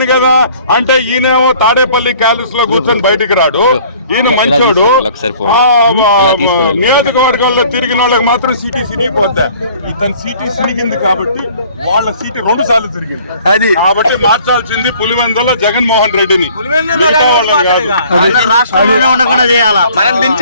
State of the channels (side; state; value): both; inverted; correlation -0.54